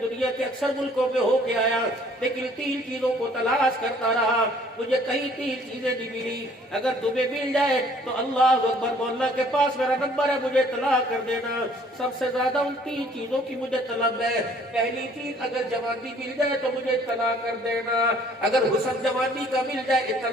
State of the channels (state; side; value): normal; both; correlation 0.58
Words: کے اکثر ملکوں میں ہو کے آیا, لیکن 3 چیزوں کو تلاش کرتا رہا, مجھے کہیں 3 چیزیں نہیں ملی. اگر تمہیں مل جائے تو اللہ اکبر, مولا کے پاس میرا نمبر ہے, مجھے اطلاع کر دینا. سب سے زیادہ ان 3 چیزوں کی مجھے طلب ہے. پہلی چیز, اگر جوانی مل جائے تو مجھے اطلاع کر دینا. اگر حسن جوانی کا مل جائے